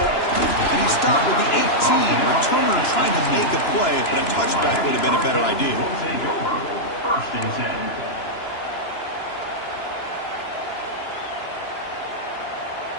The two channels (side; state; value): right; late; 2.9 ms